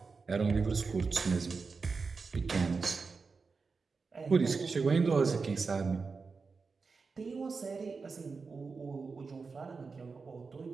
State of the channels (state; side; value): quieter; left; 4.7 dB